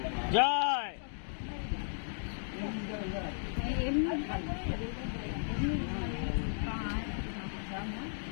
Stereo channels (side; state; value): right; silent; digital silence